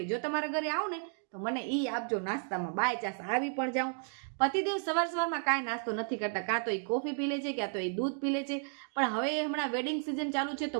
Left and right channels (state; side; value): silent; left; 56 dB below the other